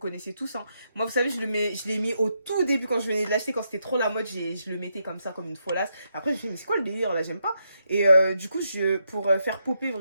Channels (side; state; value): both; inverted; correlation -0.80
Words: tous, hein. Moi, vous savez, je l'ai mis au tout début quand je venais de l'acheter, quand c'était trop la mode, je le mettais comme ça, comme une folasse. Après, je me suis dit, mais c'est quoi le délire là, j'aime pas. Et du coup, pour faire popper